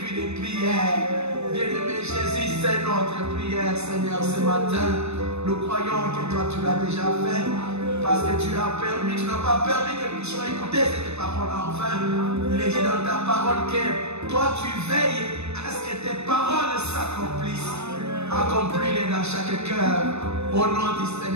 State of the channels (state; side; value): late; left; 0.81 ms